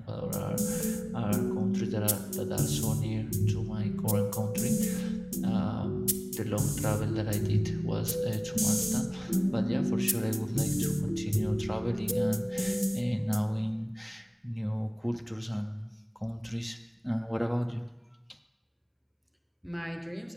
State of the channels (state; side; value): identical; both; correlation 1.00